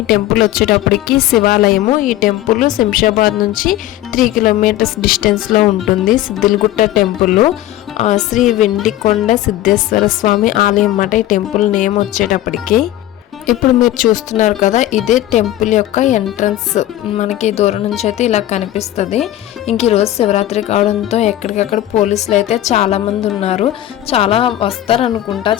టెంపుల్ వచ్చేటప్పటికి శివాలయము. ఈ టెంపుల్ శంషాబాద్ నుంచి 3 కిలోమీటర్స్ డిస్టెన్స్లో ఉంటుంది. సిద్దిలగుట్ట టెంపుల్ శ్రీ వెండికొండ సిద్ధేశ్వర స్వామి ఆలయం అన్నమాట ఈ టెంపుల్ నేమ్ వచ్చేటప్పటికి. ఇప్పుడు మీరు చూస్తున్నారు కదా, ఇదే టెంపుల్ యొక్క ఎంట్రన్స్. మనకి దూరం నుంచి అయితే ఇలా కనిపిస్తుంది. ఇంక ఈరోజు శివరాత్రి కావడంతో ఎక్కడికక్కడ పోలీసులు అయితే చాలామంది ఉన్నారు. చాలా వస్తారు అనుకుంటా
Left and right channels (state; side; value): quieter; right; 13.8 dB